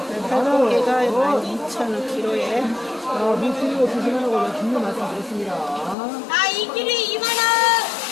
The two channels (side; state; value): right; drops out; at 6.0 s